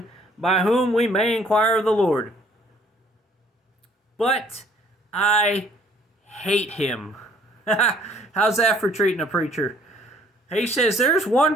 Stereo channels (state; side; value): normal; both; correlation 0.60